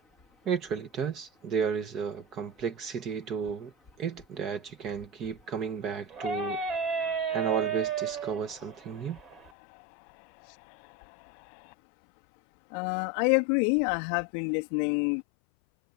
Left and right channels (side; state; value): right; drops out; at 9.5 s